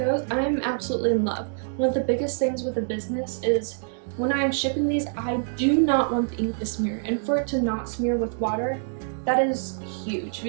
I am absolutely in love. One of the biggest things with a business is when I am shipping these, I do not want the ink to smear, and for it to not smear with water, that is huge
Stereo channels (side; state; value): left; silent; digital silence